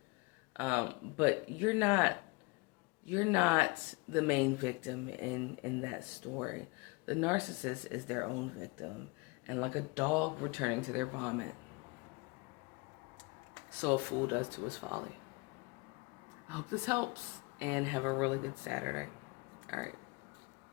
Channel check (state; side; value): quieter; right; 27.5 dB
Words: But you're not the main victim in that story. The narcissist is their own victim, and like a dog returning to their vomit, so a fool does to his folly. I hope this helps, and have a really good Saturday. All right.